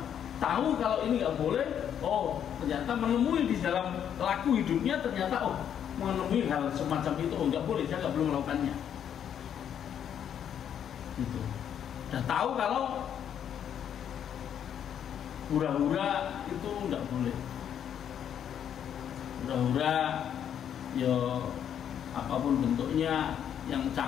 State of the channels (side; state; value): right; quieter; 9.1 dB